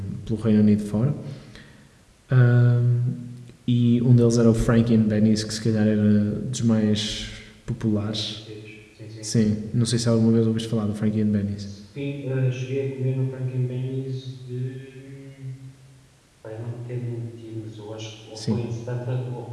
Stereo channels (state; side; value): identical; both; correlation 1.00